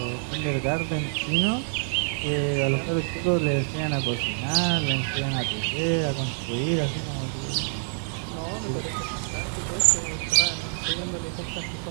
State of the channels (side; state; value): left; silent; digital silence